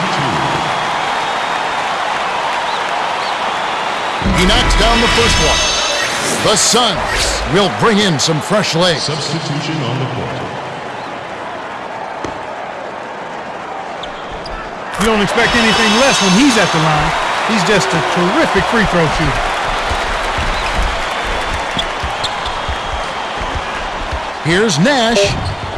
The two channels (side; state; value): both; identical; correlation 1.00